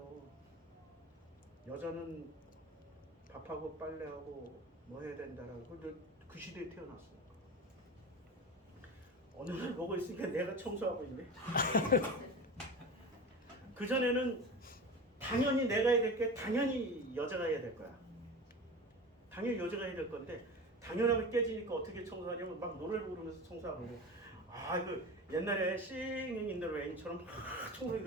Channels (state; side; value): normal; both; correlation 0.30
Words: 여자는 밥하고 빨래하고 뭐 해야 된다라고. 그 시대에 태어났어. 어느 날 보고 있으니까 내가 청소하고 있네. 그전에는 당연히 내가 해야 될 게 당연히 여자가 해야 될 거야. 당연히 여자가 해야 될 건데 당연함이 깨지니까 어떻게 청소하냐면 막 노래를 부르면서 청소하고 그래. 그 옛날에 싱잉인더로 애인처럼 막 청소기